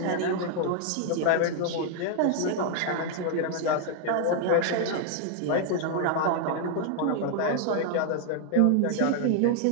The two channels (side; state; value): both; different; correlation 0.00